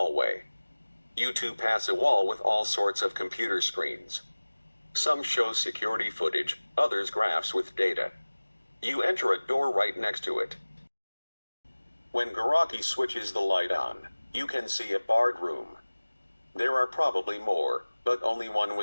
You two pass a wall with all sorts of computer screens. Some show security footage, others graphs with data. You enter a door right next to it. When Garaki switches the light on, you can see a barred room. There are probably more, but only one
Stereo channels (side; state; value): both; inverted; correlation -1.00